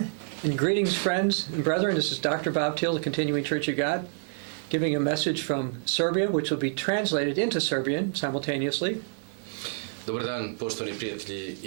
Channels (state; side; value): silent; left; 60 dB below the other